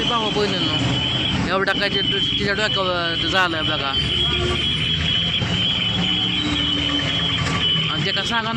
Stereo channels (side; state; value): both; identical; correlation 1.00